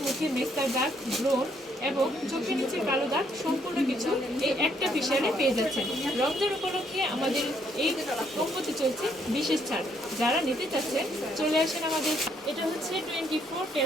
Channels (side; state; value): both; normal; correlation 0.70